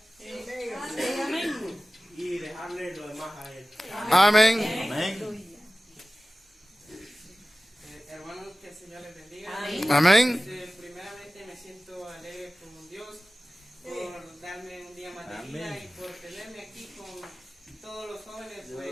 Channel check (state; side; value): normal; both; correlation 0.96